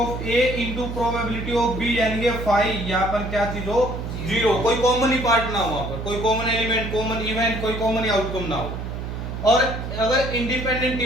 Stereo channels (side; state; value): right; noise; hum, 6 dB below the sound